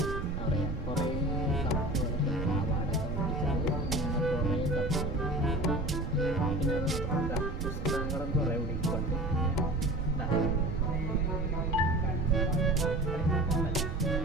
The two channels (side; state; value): right; noise; rumble, 4 dB below the sound